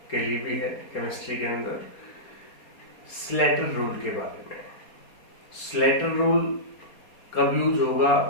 के लिए भी है। केमिस्ट्री के अंदर स्लेटर रूल के बारे में, स्लेटर रूल कब यूज होगा,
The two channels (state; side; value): late; right; 4.2 ms